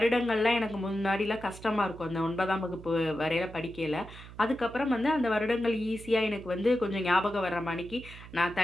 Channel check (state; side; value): noise; right; hum, 16 dB below the sound